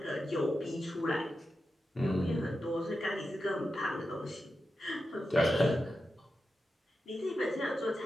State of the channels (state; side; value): normal; both; correlation 0.90